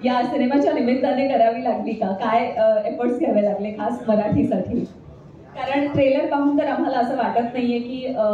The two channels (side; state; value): both; identical; correlation 1.00